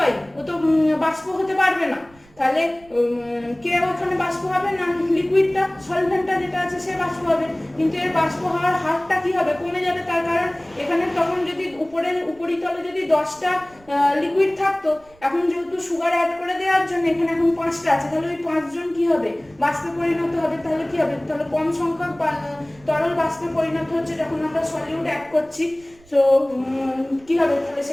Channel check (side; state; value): right; noise; rumble, 27 dB below the sound